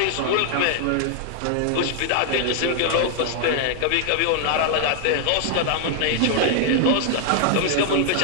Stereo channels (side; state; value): both; different; correlation 0.00